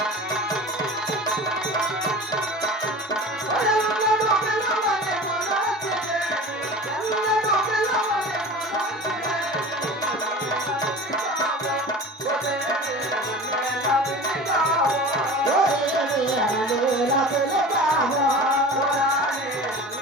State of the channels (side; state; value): both; normal; correlation 0.36